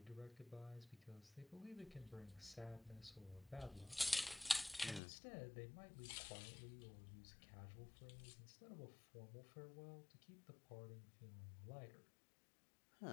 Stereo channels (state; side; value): drops out; right; at 5.0 s